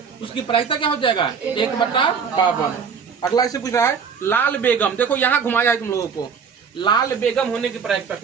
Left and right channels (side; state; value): left; quieter; 6.3 dB